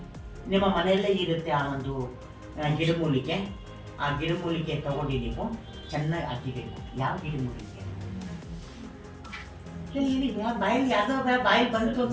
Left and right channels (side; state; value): both; identical; correlation 1.00